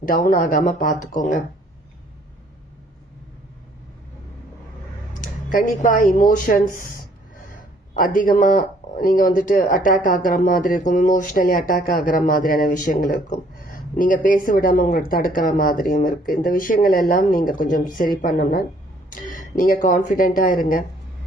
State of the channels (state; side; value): normal; both; correlation 0.62